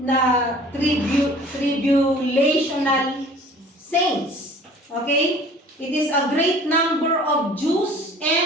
tribulational saints. Okay? It is a great number of Jews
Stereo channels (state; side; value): normal; both; correlation 0.48